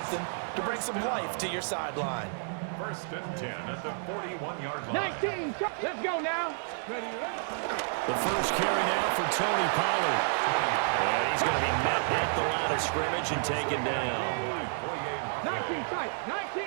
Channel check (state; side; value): silent; left; digital silence